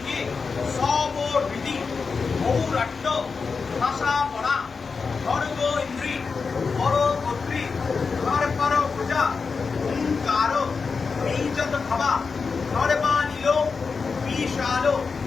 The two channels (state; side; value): quieter; right; 4.9 dB